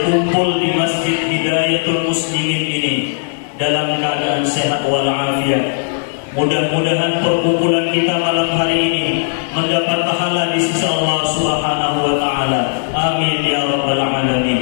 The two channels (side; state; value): right; silent; digital silence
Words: di Masjid Hidayatul Muslimin ini dalam keadaan sehat walafiat. Mudah-mudahan perkumpulan kita malam hari ini mendapat pahala di sisi Allah Subhanahu wa Ta'ala. Amin ya rabbal